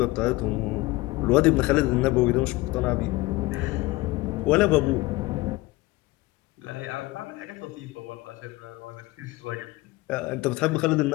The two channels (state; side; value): quieter; right; 20.7 dB